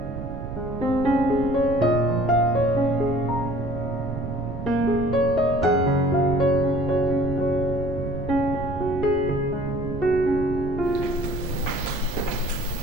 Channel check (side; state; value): right; noise; rumble, 7 dB below the sound